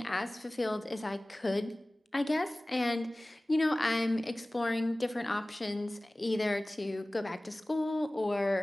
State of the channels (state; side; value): normal; both; correlation 0.98